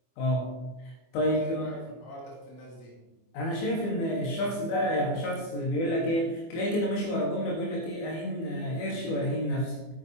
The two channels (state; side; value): late; right; 24 ms